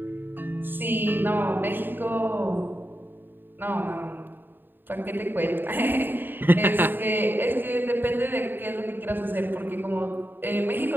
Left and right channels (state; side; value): late; left; 0.094 ms